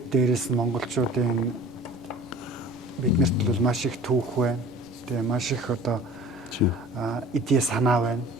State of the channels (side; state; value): both; normal; correlation 0.44